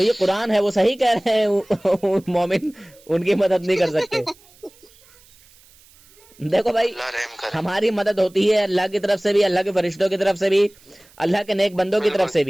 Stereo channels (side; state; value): right; noise; hiss, 28 dB below the sound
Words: قرآن ہے، وہ صحیح کہہ رہے ہیں، مومن ان کی مدد نہیں کر سکتے. دیکھو بھائی، اللہ رحم کرے. ہماری مدد ہوتی ہے اللہ کی طرف سے بھی، اللہ کے فرشتوں کی طرف سے بھی، اللہ کے نیک بندوں کی طرف سے